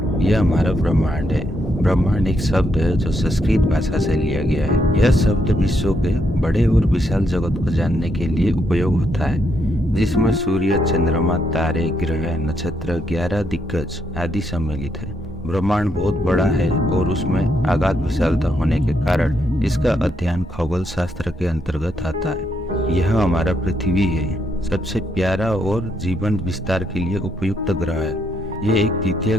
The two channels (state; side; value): normal; both; correlation 0.77